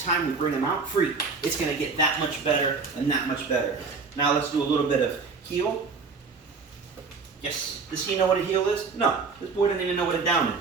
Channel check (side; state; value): left; quieter; 4.7 dB